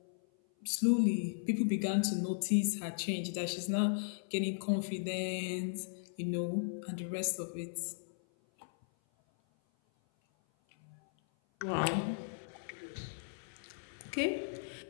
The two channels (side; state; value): right; silent; 53 dB below the other